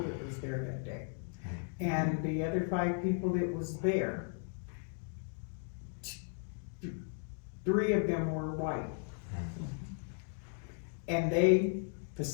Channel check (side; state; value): right; silent; 54 dB below the other